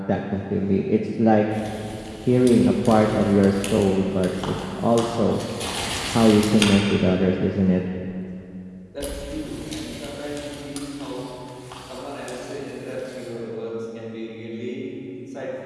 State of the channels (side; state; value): both; identical; correlation 1.00